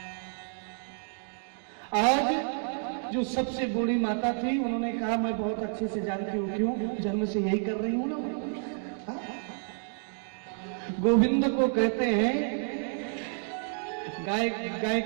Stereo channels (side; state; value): left; silent; 58 dB below the other